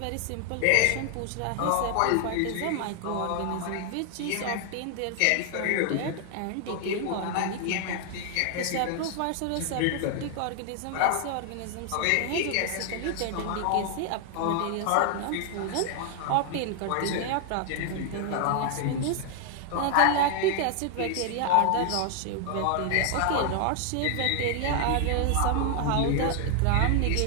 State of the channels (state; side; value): different; both; correlation 0.00